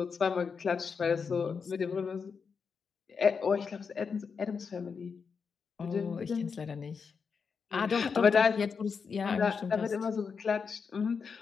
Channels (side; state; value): right; quieter; 5.7 dB